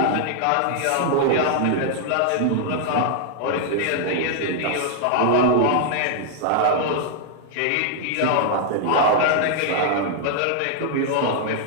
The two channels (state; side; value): different; both; correlation -0.01